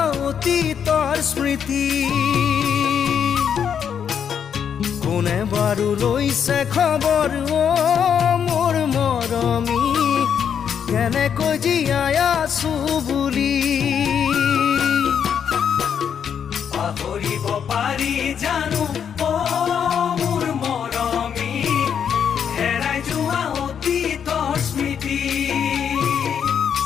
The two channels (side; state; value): right; quieter; 7.9 dB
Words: অতীতৰ স্মৃতি কোনে বাৰু লৈছে খবৰ মোৰ মৰমী কেনেকৈ জীয়াই আছো বুলি পাহৰিব পাৰি জানো মোৰ মৰমী হেৰাই যোৱা অতীতৰ স্মৃতি